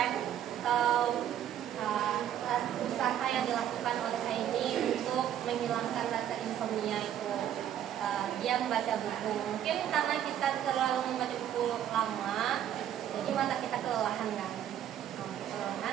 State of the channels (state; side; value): quieter; left; 10.6 dB